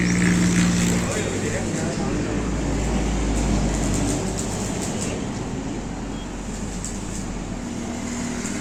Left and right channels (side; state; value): both; identical; correlation 1.00